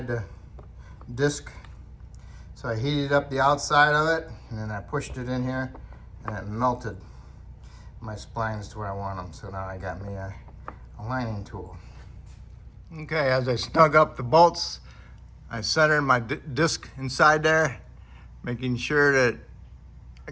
the disc. So I heated up the outside of it, and then I pushed it in here, and it melted my splines to where I want them. So now I got me a lining tool. Okay, as I snug up the bolts, I centered my disc inside there, making sure that I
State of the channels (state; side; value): identical; both; correlation 1.00